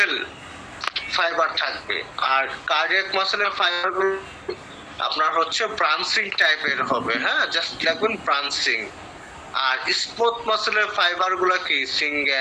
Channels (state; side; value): identical; both; correlation 1.00